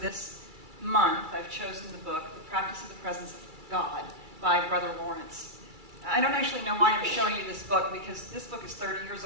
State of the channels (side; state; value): left; late; 2.3 ms